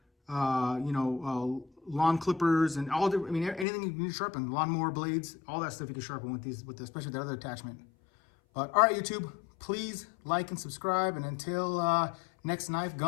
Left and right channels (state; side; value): drops out; right; at 3.7 s